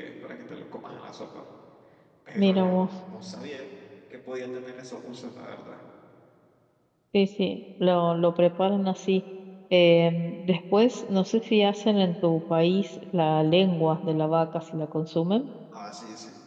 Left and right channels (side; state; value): both; identical; correlation 1.00